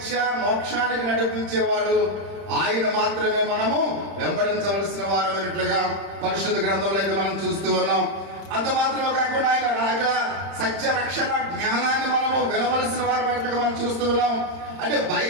మోక్షానికి నడిపించేవాడు. ఆయన మాత్రమే మనము వెంబడించవలసిన వారమైనట్లుగా పరిశుద్ధ గ్రంథంలో అయితే మనం చూస్తూ ఉన్నాం. అంత మాత్రమే కాకుండా ఆయన రాక సత్య రక్షణ జ్ఞానాన్ని మనము వినవలసిన వారమైనట్లుగా మనం చూస్తూ ఉన్నాం. అంటే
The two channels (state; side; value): late; left; 30 ms